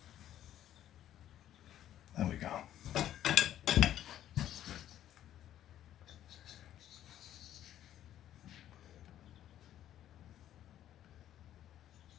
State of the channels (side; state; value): right; quieter; 11.7 dB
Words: There we go.